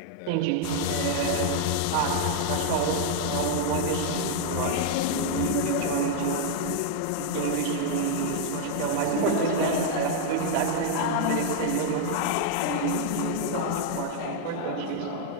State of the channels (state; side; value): different; both; correlation 0.00